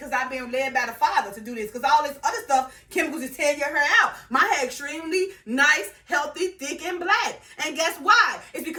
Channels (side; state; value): both; identical; correlation 1.00